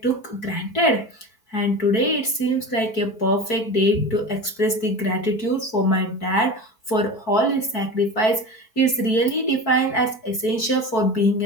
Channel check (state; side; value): late; right; 4.6 ms